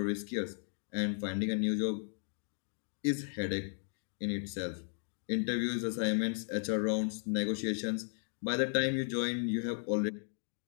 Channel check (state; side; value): silent; right; 54 dB below the other